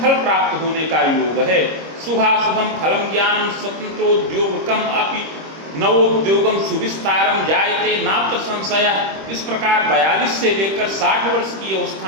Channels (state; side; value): late; left; 26 ms